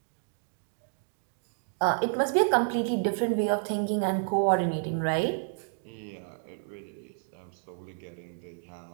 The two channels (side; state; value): left; silent; digital silence